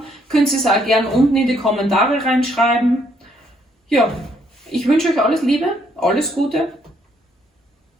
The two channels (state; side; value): normal; both; correlation 0.70